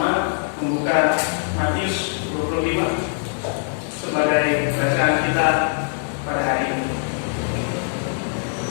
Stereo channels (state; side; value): silent; right; digital silence